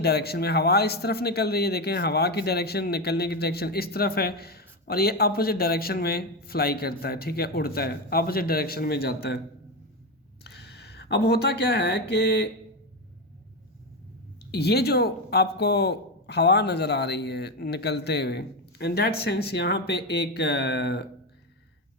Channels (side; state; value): both; normal; correlation 0.13